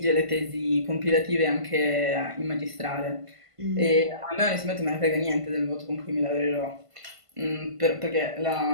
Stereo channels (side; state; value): left; late; 1.5 ms